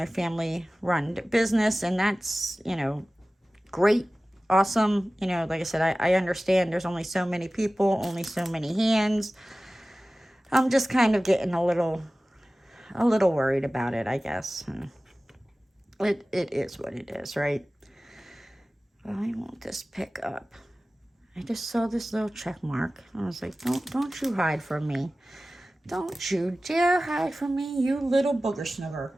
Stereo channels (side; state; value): both; normal; correlation 0.97